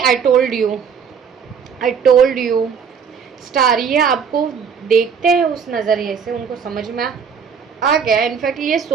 told you star. ये आपको देखते हैं उस नज़रिए से, उनको समझ में आ गया। इनफैक्ट ये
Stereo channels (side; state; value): left; quieter; 6.6 dB